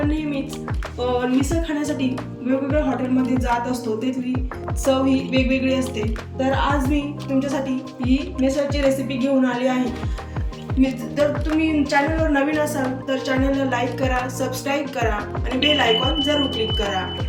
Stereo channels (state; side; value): identical; both; correlation 1.00